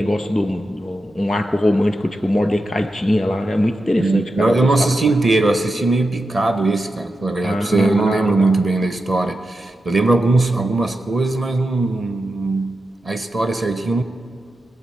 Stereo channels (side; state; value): both; normal; correlation 0.89